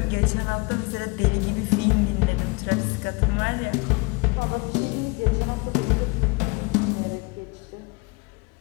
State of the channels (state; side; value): quieter; right; 27.6 dB